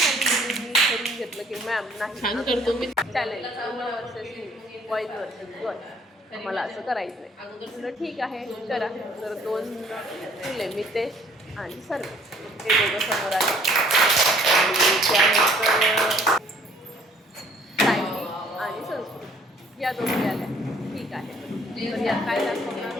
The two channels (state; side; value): normal; both; correlation 0.59